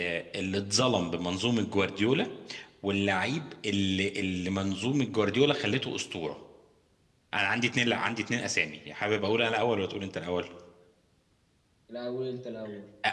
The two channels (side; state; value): both; identical; correlation 1.00